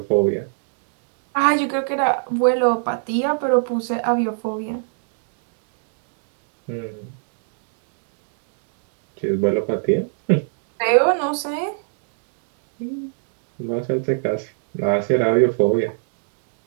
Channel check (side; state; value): left; silent; digital silence